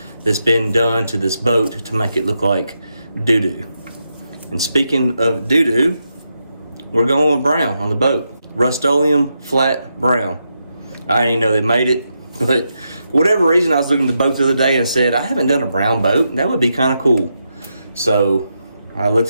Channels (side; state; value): both; inverted; correlation -0.84